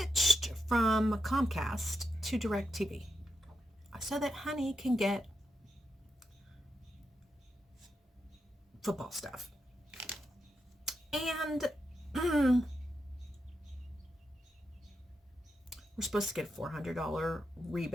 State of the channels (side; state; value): both; normal; correlation 0.86